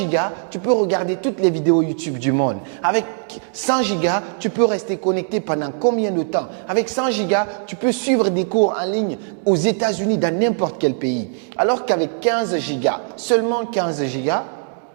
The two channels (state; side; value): silent; left; digital silence